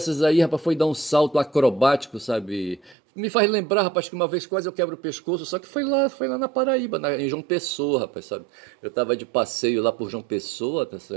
aí, rapaz, foi dar um salto acrobático, sabe? Me faz lembrar, rapaz, que uma vez quase eu quebro o pescoço, só que foi lá na Paraíba, em João Pessoa, rapaz, sabe? Eu tava de passeio lá por João Pessoa, tá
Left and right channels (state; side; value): drops out; left; at 3.0 s